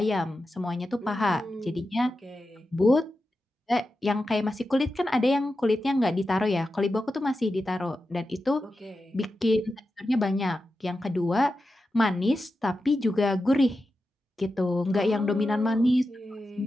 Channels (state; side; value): normal; both; correlation 0.91